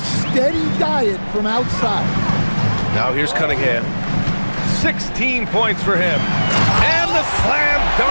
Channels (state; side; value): inverted; both; correlation -1.00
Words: steady diet from outside. Now here's Cunningham. 16 points for him. And the slam